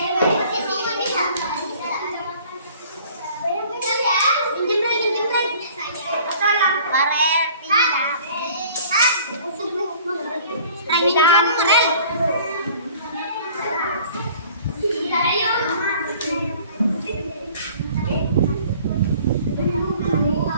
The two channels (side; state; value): both; inverted; correlation -0.50